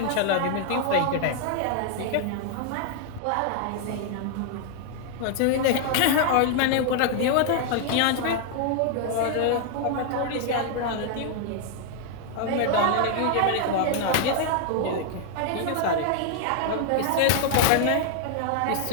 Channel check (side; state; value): both; different; correlation 0.00